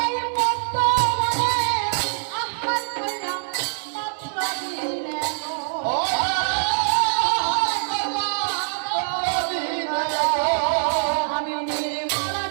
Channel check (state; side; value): silent; left; digital silence